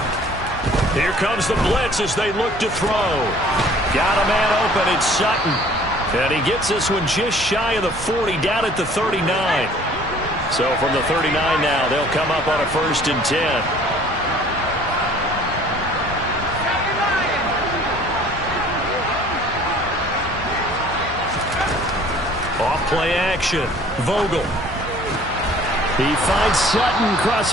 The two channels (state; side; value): normal; both; correlation 0.53